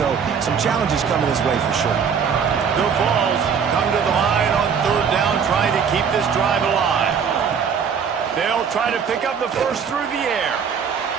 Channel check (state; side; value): quieter; left; 6.7 dB